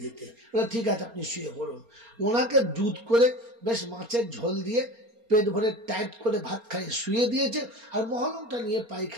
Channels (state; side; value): late; left; 4.3 ms